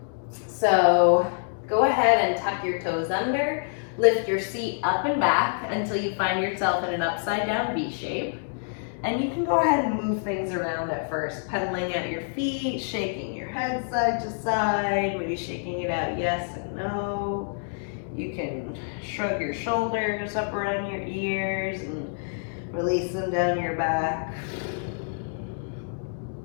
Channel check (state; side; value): silent; right; digital silence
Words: So go ahead and tuck your toes under, lift your seat up and back until you find yourself in an upside down V shape. And you can go ahead and move things around at first, pedaling at your feet, shaking your head side to side, maybe shaking it out yes and no. You can shrug your shoulders up around your ears and release them down your back.